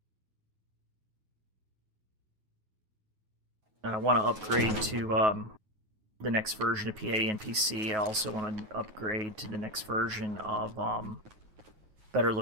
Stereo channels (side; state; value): left; late; 9.4 ms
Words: I want to upgrade to the next version of PANPC. I also want to upgrade to the next version of better